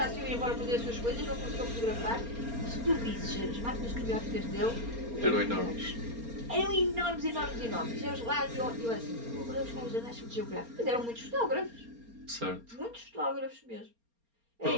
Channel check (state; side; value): late; left; 4.3 ms